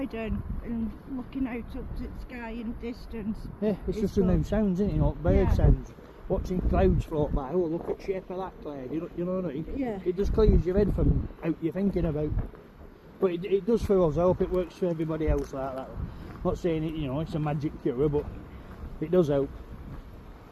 and looking out up to the sky in the distance. Yeah, it's just a good. new sounds, isn't it? You know, bird Yeah. sounds, watching clouds float by. Oh, look at the shape of that cloud. You know what I mean? Yeah. It just clears your head from out you're thinking about. But it does for us. I hope it works for everybody else like that. Not saying it, you know, it's a magic cure, but it does help.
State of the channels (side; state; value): both; identical; correlation 1.00